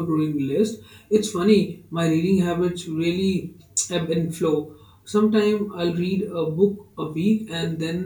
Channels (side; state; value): both; identical; correlation 1.00